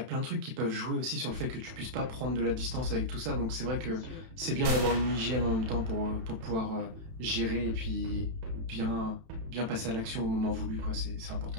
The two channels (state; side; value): late; left; 31 ms